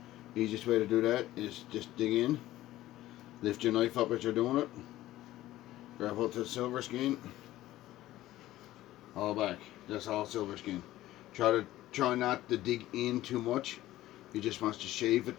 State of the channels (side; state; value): right; quieter; 15.3 dB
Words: The easiest way to do that is just dig in, lift your knife up as you're doing it, grab hold to the silver skin, all back. That's all silver skin. Try not to dig in too much. You just want to shave it